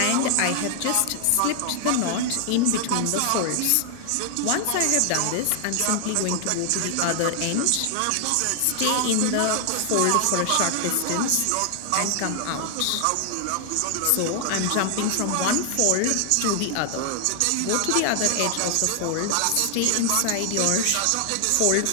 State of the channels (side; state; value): both; different; correlation 0.00